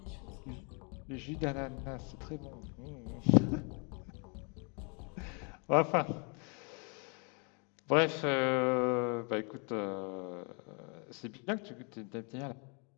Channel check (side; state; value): right; quieter; 35.1 dB